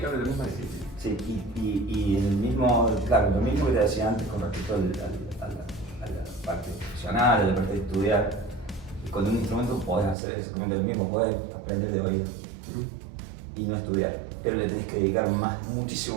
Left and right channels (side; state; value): left; drops out; at 10.2 s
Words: la misma disciplina. Sí, y el mismo, claro, lo mismo que te decía antes con respecto a la parte profesional, a la parte de estudiar, con un instrumento podés hacer exactamente lo mismo, podés aprender de oído y no estudiar, pero le tenés que dedicar